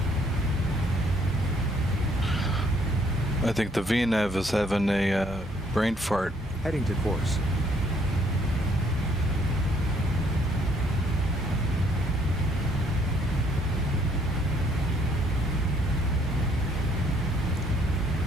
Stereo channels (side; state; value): both; normal; correlation 0.66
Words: I think the VNAV is having a brain fart. Heading to course.